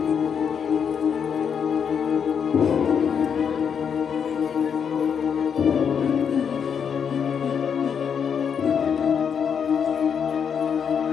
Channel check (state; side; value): quieter; right; 7.2 dB